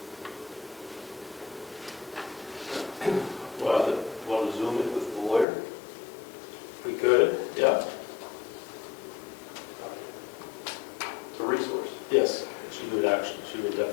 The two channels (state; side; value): drops out; right; at 5.5 s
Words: Well, Want to zoom it with the lawyer? we could, yeah, It's a resource. yes. She would